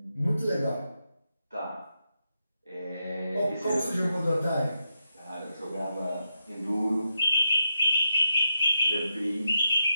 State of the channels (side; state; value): both; inverted; correlation -0.85